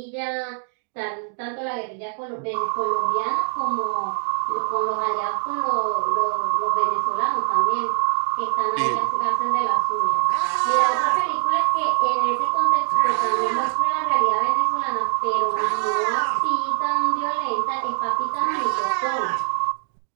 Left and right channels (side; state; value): left; silent; 63 dB below the other